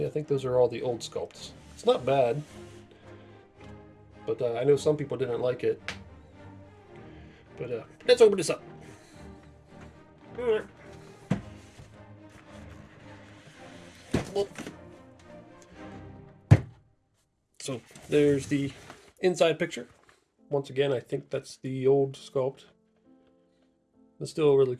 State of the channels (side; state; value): both; identical; correlation 1.00